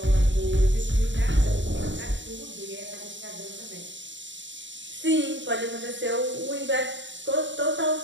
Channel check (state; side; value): late; left; 0.54 ms